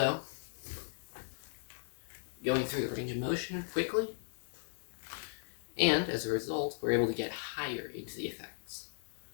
going through the range of motion quickly, and as a result, we're able to get higher into the effects.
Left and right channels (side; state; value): right; silent; digital silence